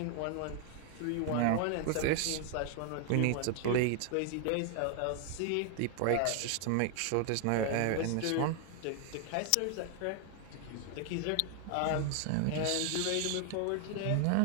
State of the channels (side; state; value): both; different; correlation 0.00